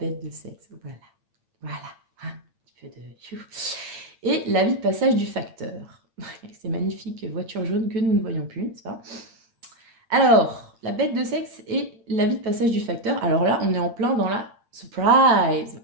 de sexe, voilà. Voilà, un petit peu de... Et la vie de passage du facteur. Ces magnifiques voitures jaunes que nous ne voyons plus, n'est-ce pas? Alors, la bête de sexe et la vie de passage du facteur. Alors là, on est en plein dans la surprise.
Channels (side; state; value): left; late; 8.8 ms